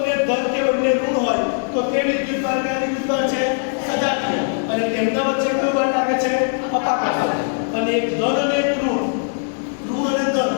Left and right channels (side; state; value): right; silent; 58 dB below the other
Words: ધન કે બંને ઋણ હોય તો તે વિદ્યુત બળ કયા વિદ્યુત બળ છે? સજાતીય. અને તેમના વચ્ચે કયું બળ લાગે છે? અપાકર્ષણ. અને એક ધન અને એક ઋણ અને ધન